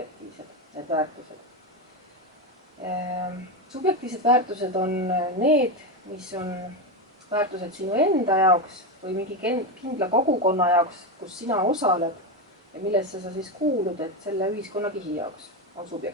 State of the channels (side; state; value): both; normal; correlation 0.13